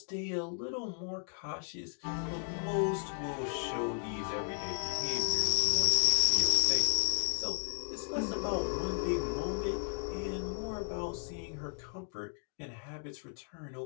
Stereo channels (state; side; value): silent; right; 55 dB below the other